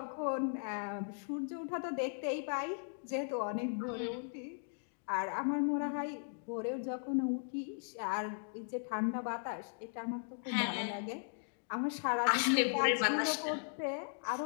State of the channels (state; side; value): silent; right; digital silence